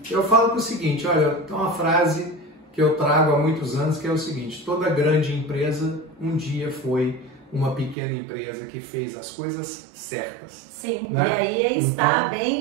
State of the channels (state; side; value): drops out; left; at 8.0 s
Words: Eu falo o seguinte, olha, tem uma frase que eu trago há muitos anos, que é o seguinte: toda grande empresa um dia foi uma pequena empresa que fez as coisas certas. Sim, né? E aí é estar